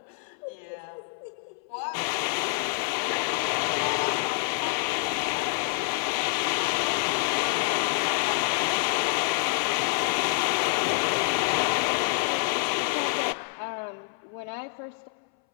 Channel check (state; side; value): silent; right; 59 dB below the other